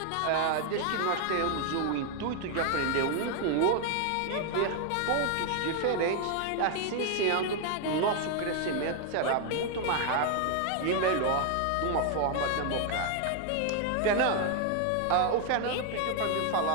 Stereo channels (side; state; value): both; different; correlation 0.00